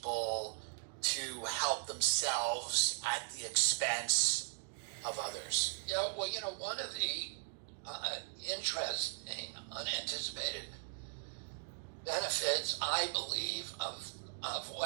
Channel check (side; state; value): left; silent; digital silence